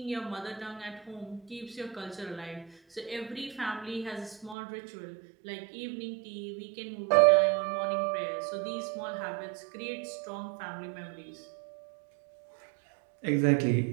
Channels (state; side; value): drops out; left; at 4.5 s